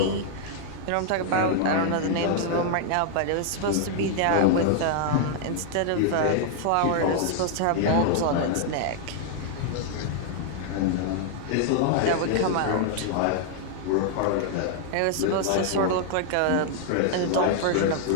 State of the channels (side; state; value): both; different; correlation -0.01